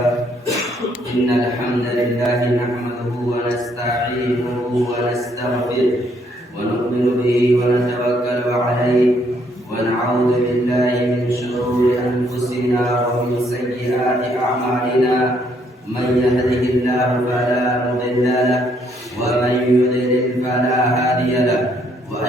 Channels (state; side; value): normal; both; correlation 0.70